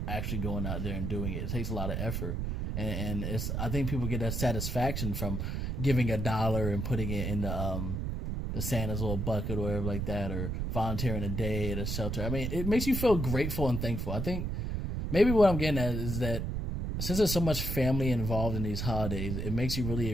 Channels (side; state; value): right; noise; rumble, 2 dB below the sound